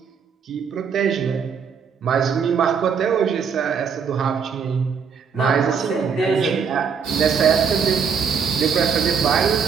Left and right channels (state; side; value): quieter; left; 6.5 dB